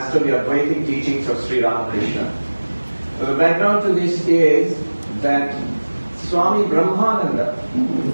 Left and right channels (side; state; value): both; inverted; correlation -1.00